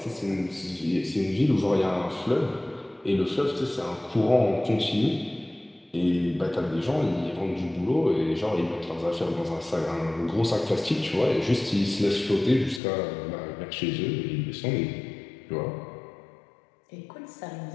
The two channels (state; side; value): drops out; right; at 12.8 s